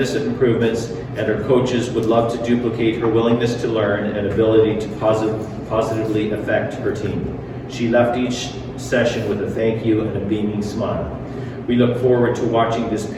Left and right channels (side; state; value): both; identical; correlation 1.00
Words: improvements, and her coaches would love to duplicate her willingness to learn and ability to positively affect her team. She left each session with a thank you and a beaming smile. We look forward to watching this